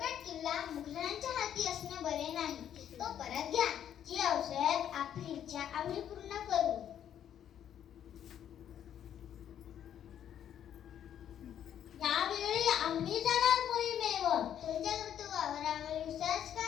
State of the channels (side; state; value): right; quieter; 9.9 dB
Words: किल्ला मुघलांच्या हाती असणे बरे नाही. तो परत घ्या. जी औषध आपली इच्छा आम्ही पूर्ण करू. यावेळी आम्ही जाणार मोहिमेवर. तुमच्या कर्तृत्वावर आम्हाला विश्वास